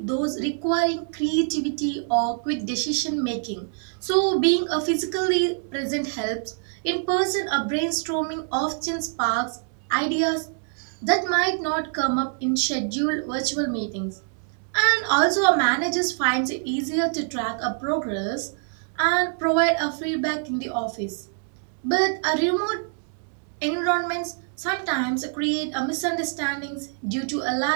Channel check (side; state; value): left; silent; 58 dB below the other